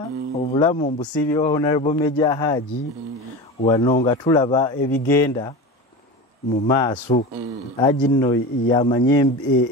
obulamu mbusiibye wa Honorable Ajirya-Hajji wano nga tulaba ebigenda mu maaso. Hajji nno yamanye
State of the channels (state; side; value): normal; both; correlation 0.28